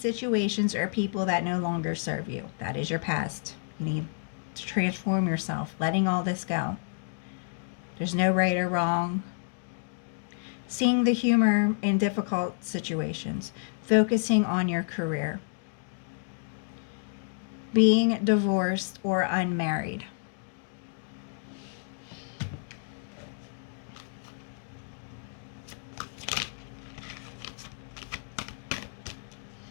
or people that no longer serve you. That is your past. You need to transform yourself, letting all this go. There's no right or wrong. Seeing the humor in difficult situations. Focusing on your career. Being divorced or unmarried.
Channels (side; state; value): right; silent; digital silence